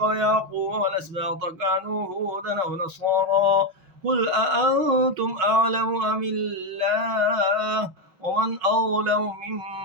ويعقوب والأسباط كانوا هودا أو نصارى قل أأنتم أعلم أم الله ومن أظلم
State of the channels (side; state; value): left; late; 5.4 ms